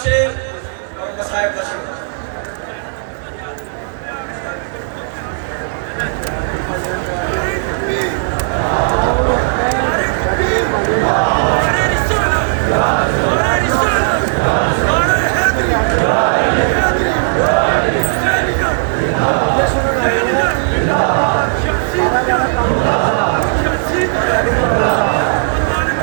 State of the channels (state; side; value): silent; left; digital silence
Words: शेर और मसाइब का शेर।